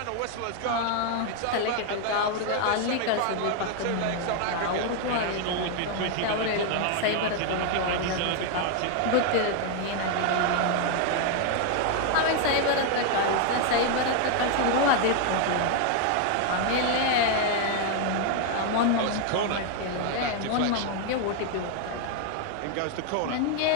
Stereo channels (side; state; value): both; different; correlation 0.00